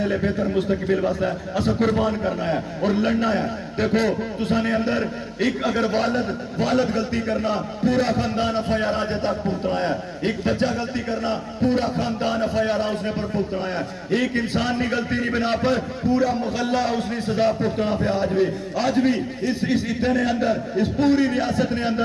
لے بہتر مستقبل واسطے اساں قربان کرنا ہے اور لڑنا ہے. دیکھو تساں نے اندر ایک اگر والد غلطی کرنا پورا خاندان FIR آج تک پھگتنا ہے، ایک بچہ غلطی کرنا پورا خاندان FIR اس نے پر پھگتنا ہے. ایک انسان نے غلطی نہیں بنا پر پورا محلہ اس نے سزا پھگتنا پہ. آج بھی اس عطے نے اندر، اس پوری ریاست نے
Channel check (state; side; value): identical; both; correlation 1.00